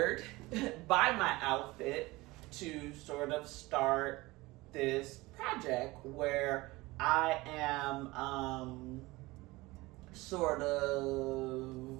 by my outfit to sort of start this project where I am sort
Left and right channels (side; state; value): left; quieter; 21.1 dB